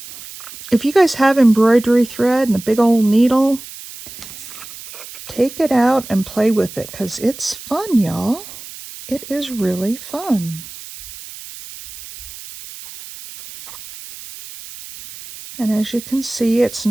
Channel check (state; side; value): noise; right; hiss, 15 dB below the sound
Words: If you guys have embroidery thread and a big old needle, take it out and play with it because it's fun, y'all. It is really fun. And as you can see, it's